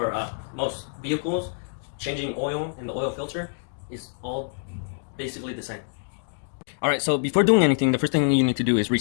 most vehicles, changing oil and the oil filter is all basically the same. Alright, so before doing anything, the first thing you need to do is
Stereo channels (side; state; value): right; silent; digital silence